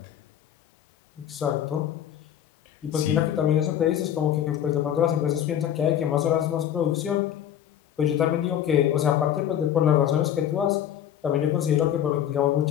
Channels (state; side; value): quieter; right; 10.3 dB